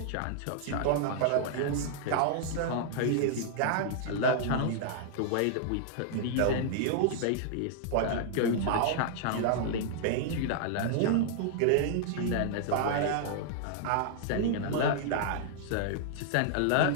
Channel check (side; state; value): both; different; correlation -0.01